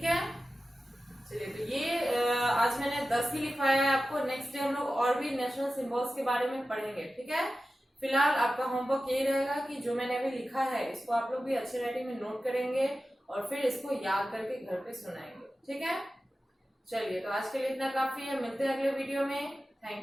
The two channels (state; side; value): normal; both; correlation 0.94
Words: है। चलिए तो ये आज मैंने 10 ही लिखवाया है आपको। नेक्स्ट डे हम लोग और भी नेशनल सिंबल्स के बारे में पढ़ेंगे, ठीक है। फिलहाल आपका होमवर्क यही रहेगा कि जो मैंने अभी लिखा है इसको आप लोग भी अच्छे राइटिंग में नोट करेंगे और फिर इसको याद करके घर पे सुनाएंगे, ठीक है। चलिए तो आज के लिए इतना काफी है, मिलते हैं अगले वीडियो में।